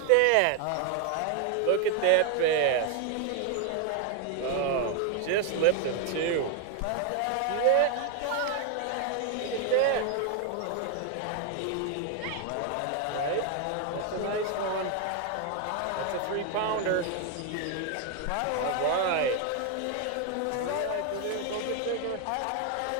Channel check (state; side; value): different; both; correlation 0.00